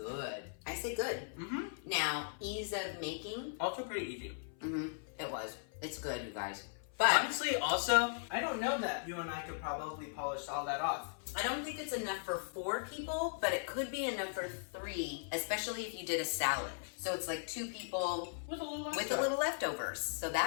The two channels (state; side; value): silent; right; 52 dB below the other